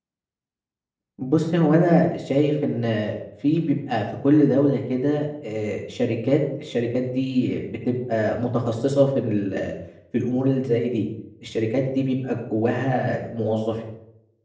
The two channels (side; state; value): both; identical; correlation 1.00